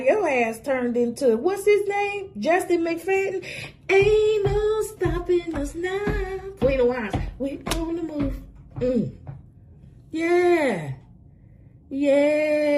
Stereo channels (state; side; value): identical; both; correlation 1.00